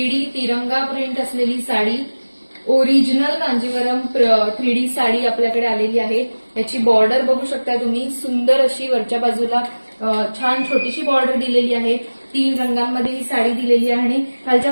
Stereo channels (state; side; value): inverted; both; correlation -1.00